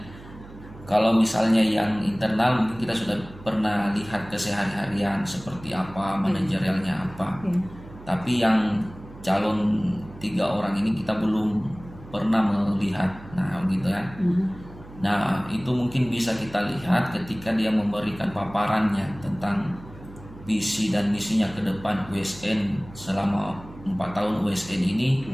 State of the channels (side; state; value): right; noise; hum, 18 dB below the sound